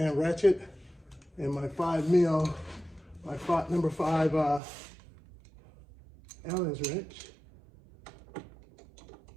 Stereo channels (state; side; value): drops out; left; at 4.6 s